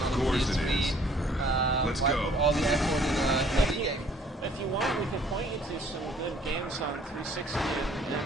on PS3? Let's why go. put all the effort in a Wii game? If you want, we could point you to some good games on 360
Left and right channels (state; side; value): normal; both; correlation 0.59